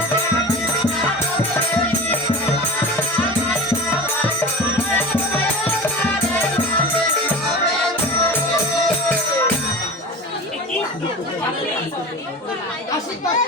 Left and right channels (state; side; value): normal; both; correlation 0.32